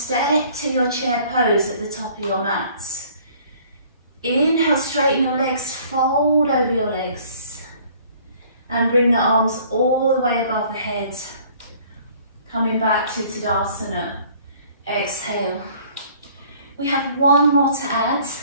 to your chair pose at the top of your mat. Inhale, straighten your legs, fold over your legs. And bring the arms all the way above the head. Coming back to Tadasana. Exhale. We have one more to add,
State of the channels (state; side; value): inverted; both; correlation -0.55